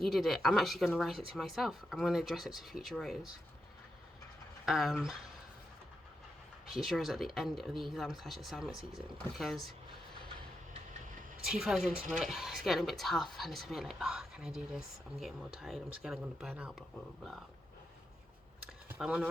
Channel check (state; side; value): normal; both; correlation 0.85